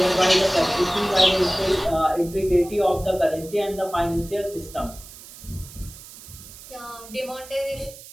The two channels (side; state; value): right; noise; hiss, 17 dB below the sound